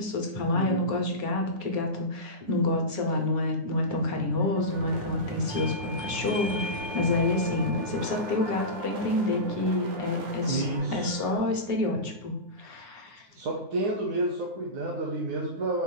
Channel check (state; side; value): late; left; 9.6 ms